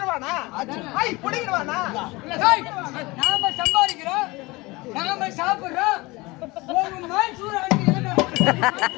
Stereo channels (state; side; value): quieter; right; 22.8 dB